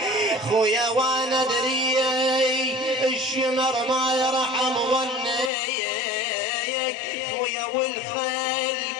خويا وانا دري الشمر ما يرحم ظنيك خويا والخيل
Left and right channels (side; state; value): right; drops out; at 5.5 s